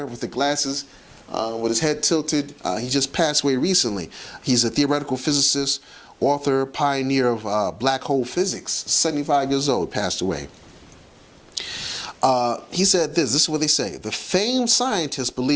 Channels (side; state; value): both; identical; correlation 1.00